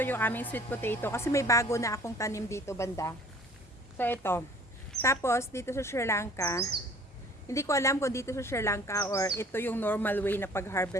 yung aming sweet potato kasi may bago na akong tanim dito banda. So ito. Tapos dito sa Sri Lanka, hindi ko alam kung dito sa Sri Lanka or ito yung normal way na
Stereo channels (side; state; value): both; normal; correlation 0.52